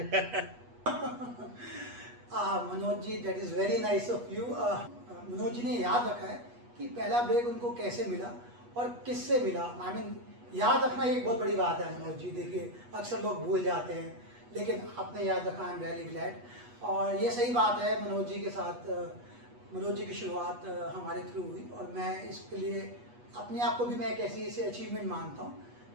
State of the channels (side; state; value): left; late; 8.3 ms